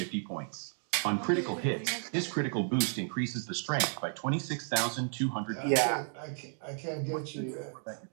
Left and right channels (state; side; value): silent; left; 56 dB below the other